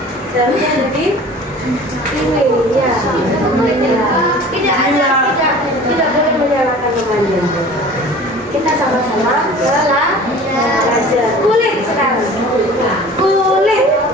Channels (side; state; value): both; normal; correlation 0.43